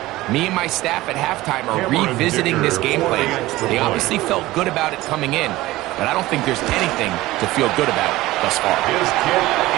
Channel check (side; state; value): left; quieter; 17.9 dB